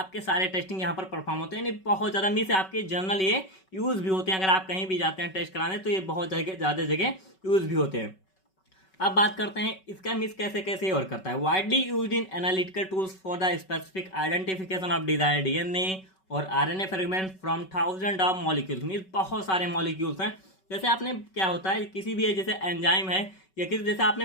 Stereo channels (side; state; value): right; late; 5.3 ms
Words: सारे टेस्टिंग यहाँ पर परफॉर्म होते हैं। नहीं बहुत ज़्यादा मीन्स आपके जनरल ये यूज़ भी होते हैं, अगर आप कहीं भी जाते हैं टेस्ट कराने तो ये बहुत ज़्यादा जगह यूज़ भी होते हैं। अब बात करते हैं इसका मीन्स कैसे कैसे वर्क करता है। Widely used in analytical tools for the specific identification of desired DNA और RNA fragment from thousand of molecules, means बहुत सारे मॉलिक्यूल्स हैं। जैसे आपने क्या होता है, किसी भी जैसे एंजाइम है या किसी, जैसे आपने